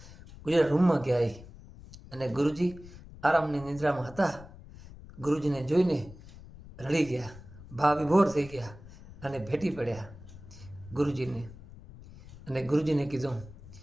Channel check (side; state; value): left; noise; rumble, 18 dB below the sound